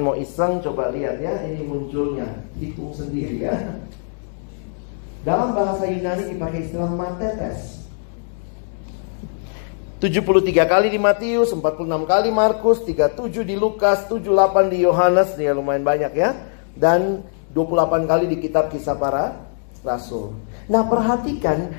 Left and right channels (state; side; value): silent; right; digital silence